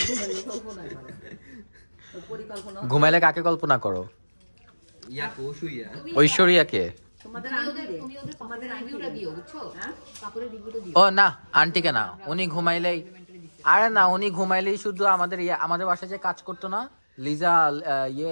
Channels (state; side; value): inverted; both; correlation -1.00